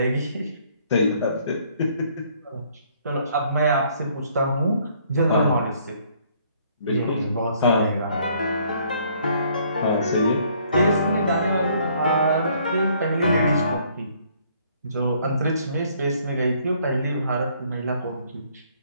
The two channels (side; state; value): both; inverted; correlation -0.64